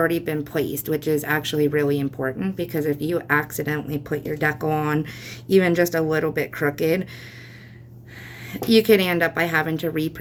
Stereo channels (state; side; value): identical; both; correlation 1.00